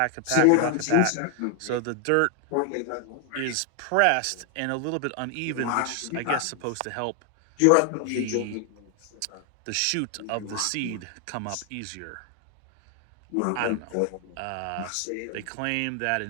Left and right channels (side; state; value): both; different; correlation 0.00